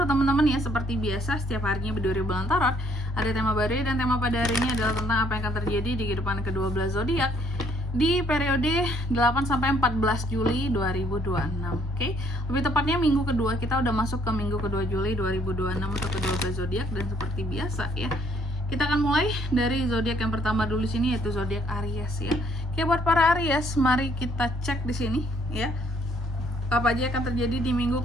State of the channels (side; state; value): both; normal; correlation 0.66